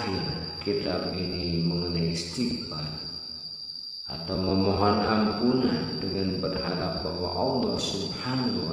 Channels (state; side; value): identical; both; correlation 1.00